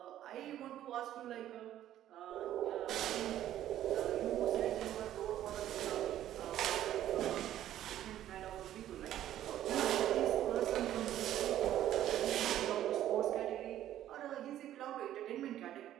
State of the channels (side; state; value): left; quieter; 12.3 dB